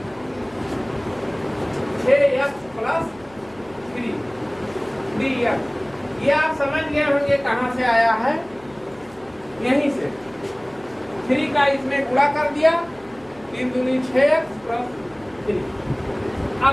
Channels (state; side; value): noise; left; hum, 26 dB below the sound